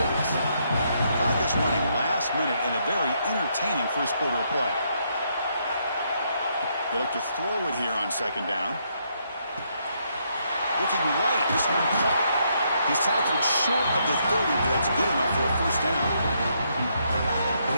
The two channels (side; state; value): both; inverted; correlation -0.75